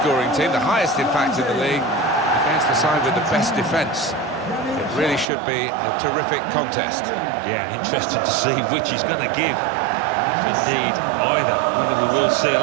team, the highest in fact in the league, against the side with the best defence. It really should be a terrific contest. Yeah, interesting to see which he's going to give. If indeed either, whether we will see a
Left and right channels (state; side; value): drops out; left; at 5.2 s